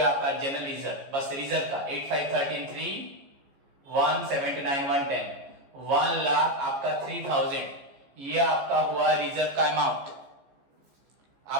आपका जनरल रिजर्व, बस रिजर्व का 8513 179 110 1 लाख आपका 3000, ये आपका हुआ रिजर्व का अमाउंट।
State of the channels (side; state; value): left; late; 15 ms